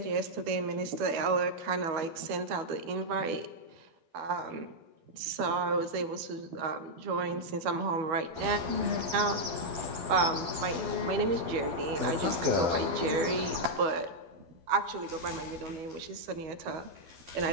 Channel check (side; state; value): left; late; 12 ms